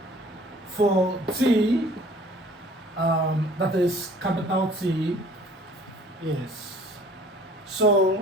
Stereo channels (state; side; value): normal; both; correlation 0.52